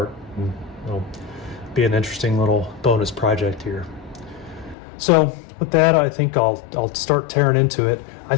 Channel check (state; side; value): drops out; right; at 4.8 s